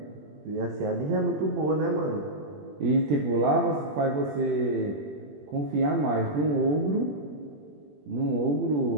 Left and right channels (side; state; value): left; late; 21 ms